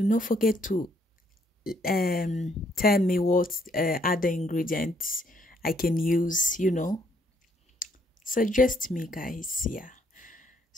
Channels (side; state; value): both; normal; correlation 0.69